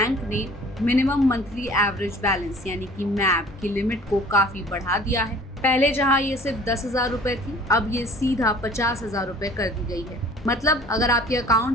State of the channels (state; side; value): normal; both; correlation 0.49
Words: ने मिनिमम मंथली एवरेज बैलेंस यानी कि मैब की लिमिट को काफी बढ़ा दिया है। पहले जहां ये सिर्फ 10,000 रुपए थी, अब ये सीधा 50,000 रुपए कर दी गई है। मतलब अगर आपके